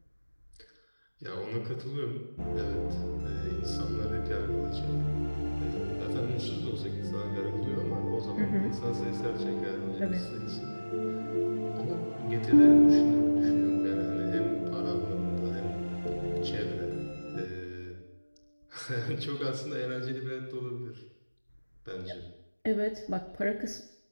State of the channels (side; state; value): both; inverted; correlation -1.00